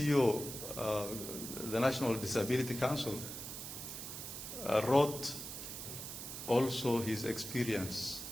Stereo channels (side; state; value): right; noise; hiss, 8 dB below the sound